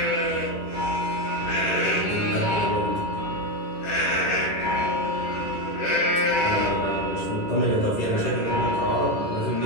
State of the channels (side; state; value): right; late; 10 ms